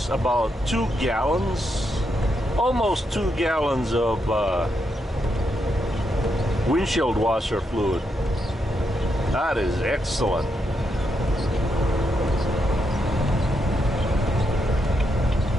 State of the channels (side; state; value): both; normal; correlation 0.81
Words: about 2 gallons, almost 2 gallons of windshield washer fluid? That is excellent.